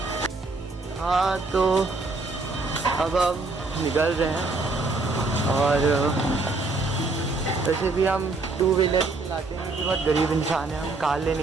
हाँ तो अब हम निकल रहे हैं और वैसे भी हम 2 व्हीलर चलाते हैं क्योंकि बहुत गरीब इंसान है. हम कार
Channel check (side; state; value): left; quieter; 3.5 dB